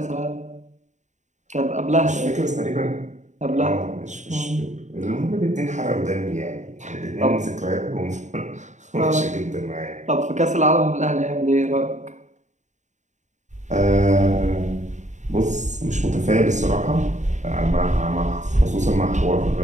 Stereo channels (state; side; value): late; left; 0.35 ms